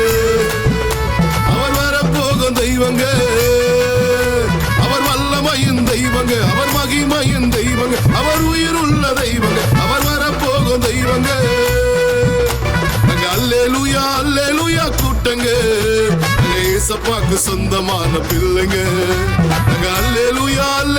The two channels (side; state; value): both; identical; correlation 1.00